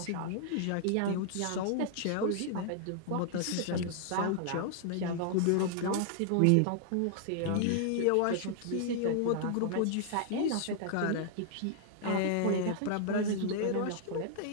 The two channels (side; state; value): both; different; correlation -0.01